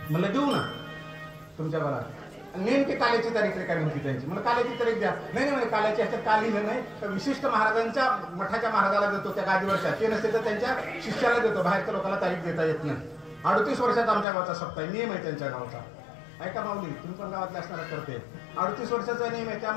म्हणलं देऊ ना तुमच्या गावाला. नेमकी काल्याची तारीख रेखावी होती त्यांची. म्हणून काल्याची तारीख द्या. नाही म्हणे काल्याची ह्याच्यात का लिहिलं नाही तर विशिष्ट महाराजांच्या मठाच्या महाराजाला देतो त्या गादीवरच्या. ते नसते तर त्यांच्या शिष्याला देतो. बाहेरच्या लोकांना तारीख देता येत नाही. 38 वर्षाचा आमच्या गावचा सप्ताह नियम आहे त्यांच्या गावचा. ऐका माऊली तुम्ही पण गावातले असणार करते. 38 वर्षाचा नियम आहे. त्या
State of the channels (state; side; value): drops out; right; at 14.2 s